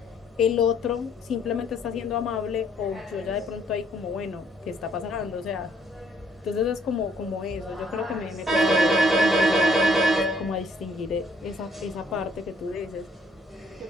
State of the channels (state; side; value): normal; both; correlation 0.65